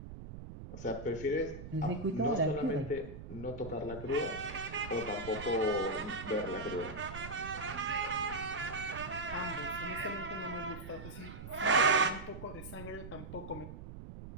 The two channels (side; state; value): right; noise; rumble, 11 dB below the sound